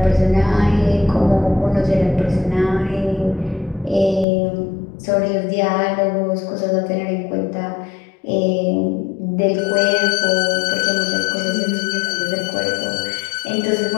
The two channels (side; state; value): right; drops out; at 4.2 s